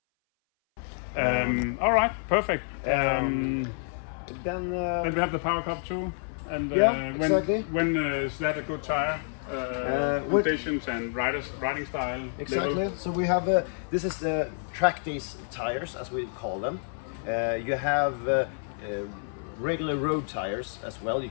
All right, perfect. Then we have the power cup too, and exactly. when is that a good tire? Conditions and riding style. Exactly. Level. So we have this is the Trackdays tires, as we call them. You have regular road tires as well you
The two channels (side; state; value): right; silent; 58 dB below the other